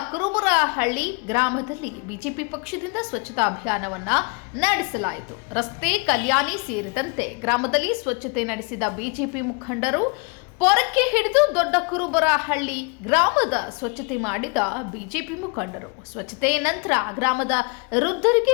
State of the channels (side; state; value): right; quieter; 33.3 dB